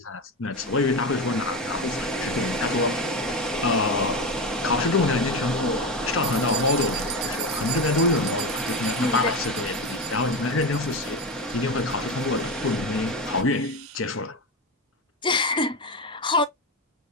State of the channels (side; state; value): both; normal; correlation 0.19